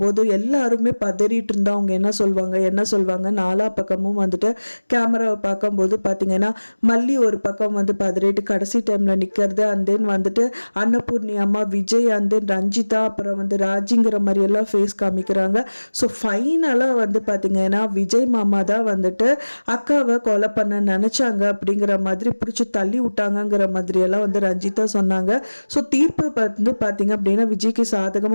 எல்லாருமே பதறிட்டு இருந்தா அவங்க என்ன சொல்வாங்க நாலா பக்கமும் கேமராவை பார்க்கும்போது பார்த்தீங்கன்னா மல்லி ஒரு பக்கம் பதறிட்டு கடைசி டைம்ல நிற்கிறது. அண்ட் தென் அன்னபூர்ணி அம்மா, விஜய், அண்ட் தென் ரஞ்சிதா, அப்புறம் ராஜிங்கிற மாதிரி எல்லாம் ஃபேஸ் காமிக்கிறாங்க. ஸோ ஃபைனலாக பார்த்தீங்கன்னா விஜய் மாமா தான் அக்காவை கொலை பண்ண நினைச்சாங்க அப்படிங்கிற மாதிரி பிடிச்சி தள்ளி விட்டாங்கிற மாதிரி எல்லாம் ரஞ்சிதா சொன்னாங்க. ஸோ தீர்ப்பு பார்த்தீங்க அப்படின்னா விஜய்க்கு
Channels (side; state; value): both; inverted; correlation -1.00